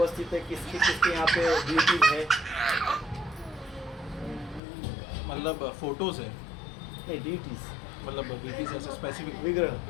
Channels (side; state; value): right; drops out; at 4.6 s